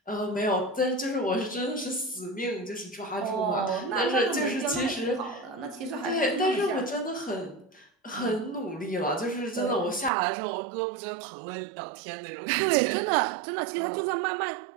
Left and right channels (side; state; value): left; drops out; at 10.1 s